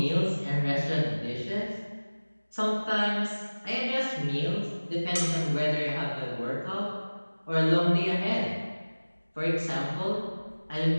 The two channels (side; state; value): both; inverted; correlation -1.00